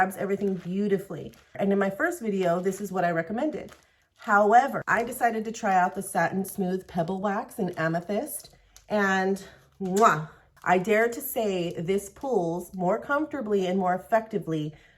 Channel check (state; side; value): identical; both; correlation 1.00